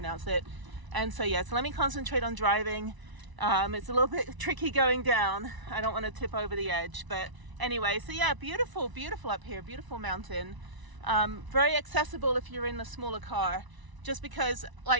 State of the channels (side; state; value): left; late; 1.0 ms